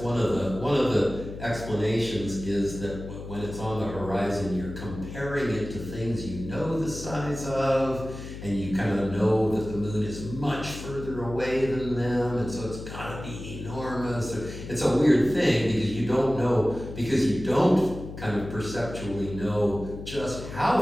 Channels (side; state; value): left; noise; hum, 10 dB below the sound